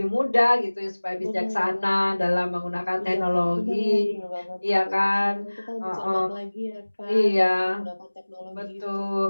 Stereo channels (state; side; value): inverted; both; correlation -1.00